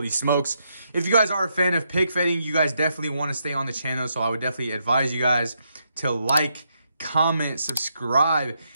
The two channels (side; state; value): both; inverted; correlation -0.79